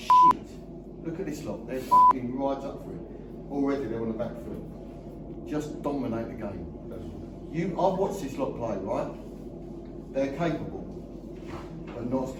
Look at this lot, they're fucking right up for it. Already they're on the back foot. Just dominate the game. I've watched this lot play, right? They're capable, but not as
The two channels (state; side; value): identical; both; correlation 1.00